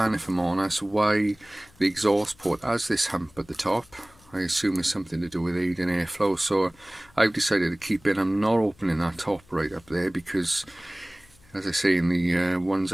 if I'm honest, why the exhaust port has this hump at the top. I assume it's something to do with aiding airflow, so I've decided to keep it. I'm not opening that top right up there because, as I say, in the ones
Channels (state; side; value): noise; left; hum, 28 dB below the sound